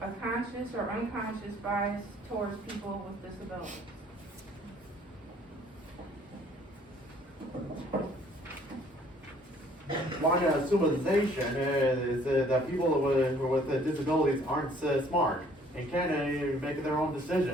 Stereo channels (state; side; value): normal; both; correlation 0.59